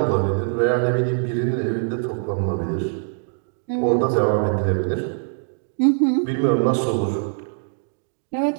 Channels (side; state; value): left; silent; 64 dB below the other